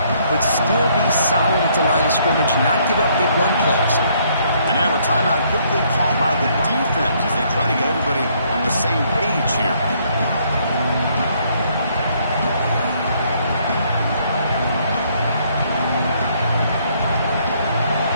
but still be solid at the line of scrimmage, not give up big run plays. And now a timeout quickly called by the defense as they try to get everybody on the same page here.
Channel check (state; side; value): inverted; both; correlation -0.67